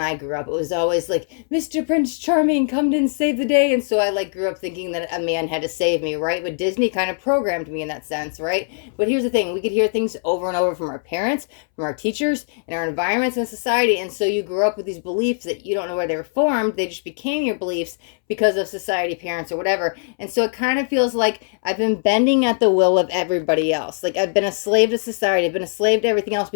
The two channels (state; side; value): silent; right; 65 dB below the other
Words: I grew up, it was always like, Mr. Prince Charming, come and save the day. And so I like grew up thinking that a man had to save me, right? But Disney kind of programmed me in that sense, right? But here's the thing, we could hear things over and over from our parents, from our teachers, and our environments and society. And so you grew up with these beliefs that you don't know where they were formed. They just became your beliefs because of society, parents, or whatever. And so it kind of feels like I've been bending at the will of everybody else. Like I've been a slave to society. I've been a slave to everything else